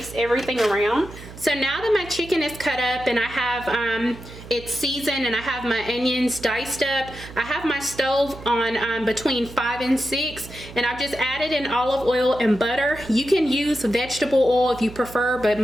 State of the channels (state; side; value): noise; right; hum, 15 dB below the sound